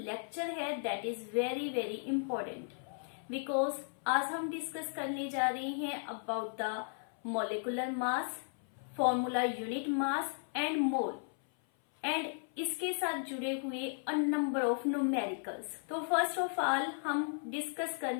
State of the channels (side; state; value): right; silent; 54 dB below the other